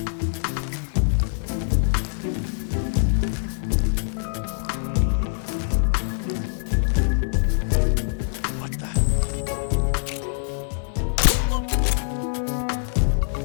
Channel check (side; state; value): right; silent; 63 dB below the other